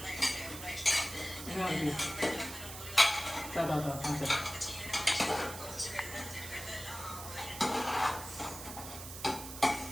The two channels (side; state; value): right; noise; hiss, 10 dB below the sound